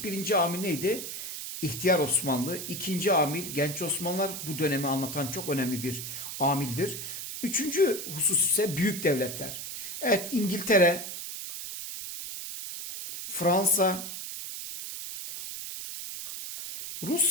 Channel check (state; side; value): noise; right; hiss, 7 dB below the sound